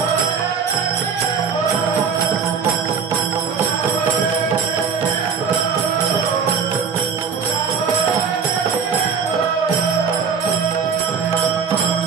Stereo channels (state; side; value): quieter; left; 6.2 dB